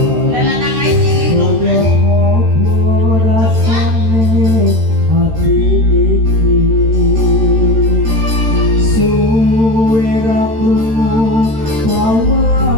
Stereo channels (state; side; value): late; left; 13 ms